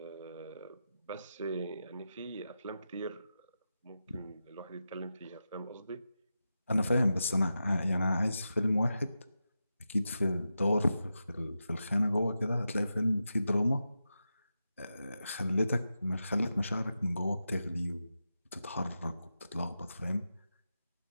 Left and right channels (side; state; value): both; inverted; correlation -0.90